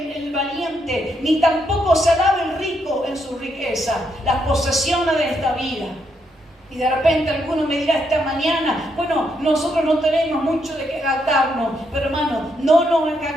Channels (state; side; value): normal; both; correlation 0.78